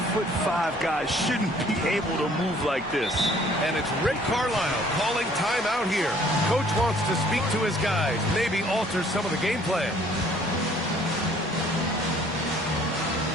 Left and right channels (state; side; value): normal; both; correlation 0.58